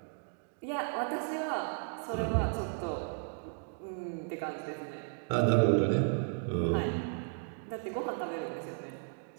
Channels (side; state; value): left; silent; 55 dB below the other